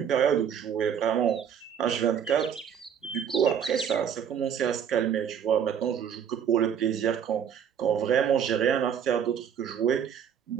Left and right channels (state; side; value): quieter; left; 8.3 dB